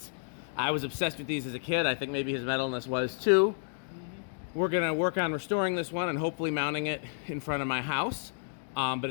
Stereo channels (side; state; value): right; silent; digital silence